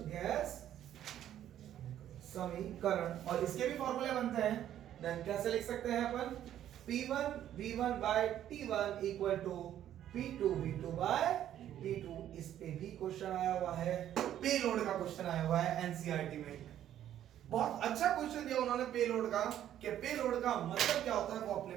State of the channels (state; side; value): quieter; left; 11.3 dB